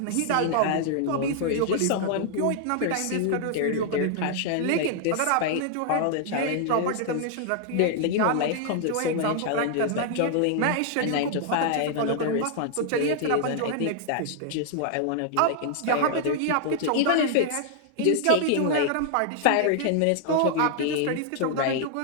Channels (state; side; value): different; both; correlation 0.00